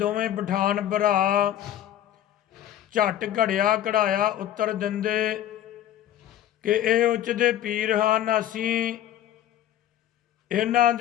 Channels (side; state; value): right; quieter; 11.6 dB